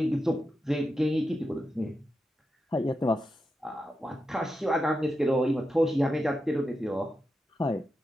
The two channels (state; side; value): normal; both; correlation 0.88